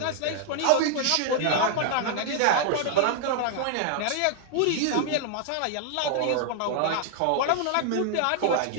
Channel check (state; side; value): different; both; correlation 0.00